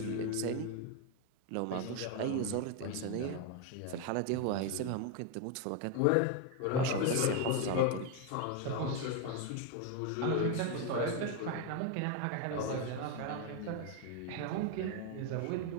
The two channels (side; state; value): both; different; correlation 0.01